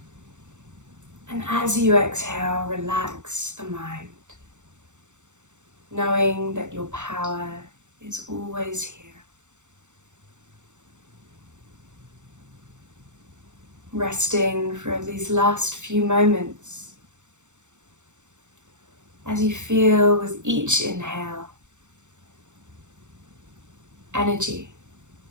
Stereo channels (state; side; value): late; left; 0.85 ms